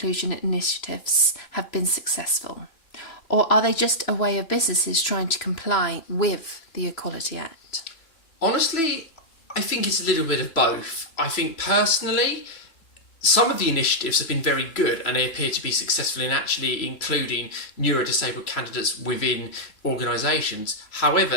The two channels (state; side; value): late; right; 3.0 ms